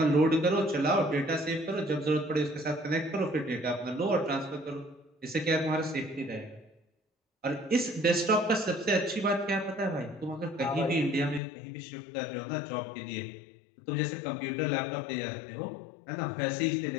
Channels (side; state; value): right; drops out; at 11.4 s